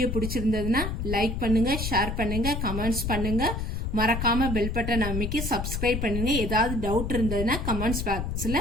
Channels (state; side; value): noise; left; rumble, 3 dB below the sound